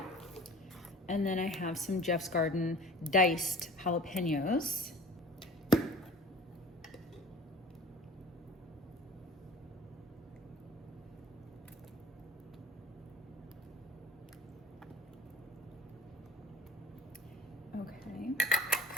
And then I have some Jeff's Garden diced jalapenos. Okay,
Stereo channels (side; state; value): both; normal; correlation 0.45